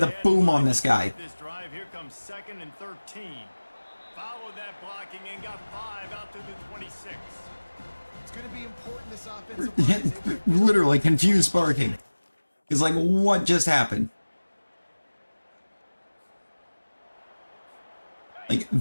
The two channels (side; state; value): both; inverted; correlation -1.00